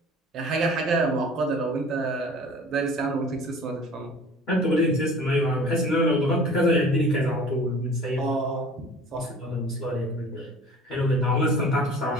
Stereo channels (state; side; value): normal; both; correlation 0.45